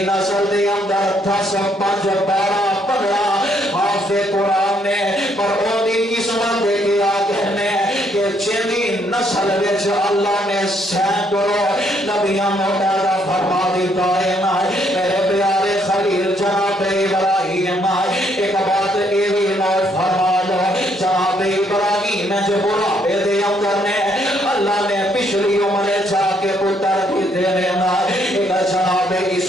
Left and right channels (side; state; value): both; normal; correlation 0.70